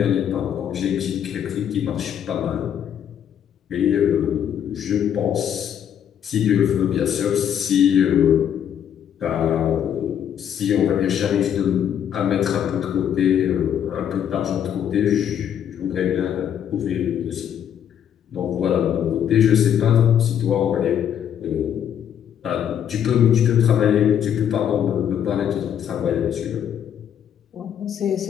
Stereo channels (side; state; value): right; quieter; 9.3 dB